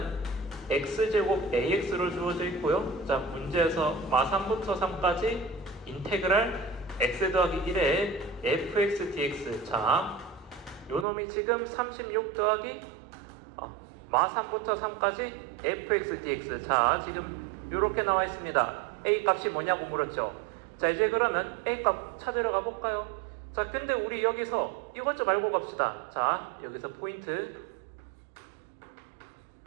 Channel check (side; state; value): left; drops out; at 11.1 s